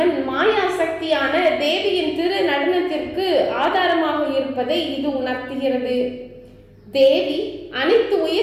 மாயா சக்தியான தேவியின் திரு நடனத்திற்கு ஆதாரமாக இருப்பதை இது உணர்த்துகிறது. தேவி அனைத்து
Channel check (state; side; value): identical; both; correlation 1.00